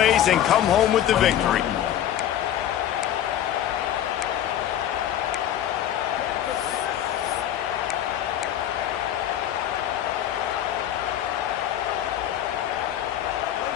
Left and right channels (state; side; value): quieter; right; 11.1 dB